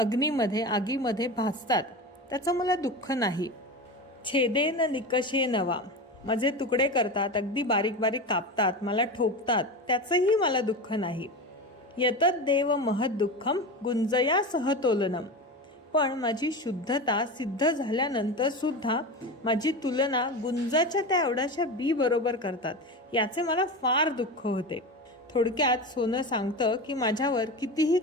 आगीमध्ये भाजतात, त्याचं मला दुःख नाही. छेदे न निकषे नवा. माझे तुकडे करतात, अगदी बारीक बारीक कापतात, मला ठोकतात, त्याचंही मला दुःख नाही. यतत देव महद दुःखम गुंजया सहतोलनम. पण माझी शुद्धता सिद्ध झाल्यानंतर सुद्धा माझी तुलना गुंजाच्या त्या एवढ्याशा बी बरोबर करतात, याचे मला फार दुःख होते. थोडक्यात सोनं सांगतं की माझ्यावर कितीही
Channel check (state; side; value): normal; both; correlation 0.25